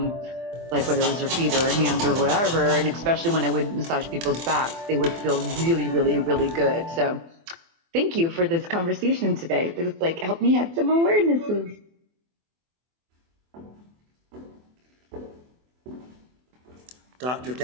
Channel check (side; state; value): left; late; 24 ms